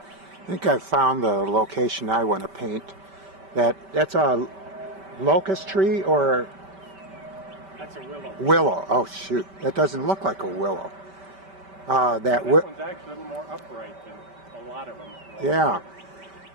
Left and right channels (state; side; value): late; left; 5.1 ms